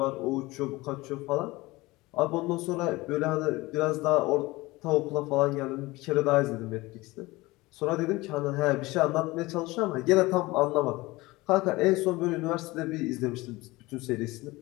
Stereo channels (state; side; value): quieter; right; 21.0 dB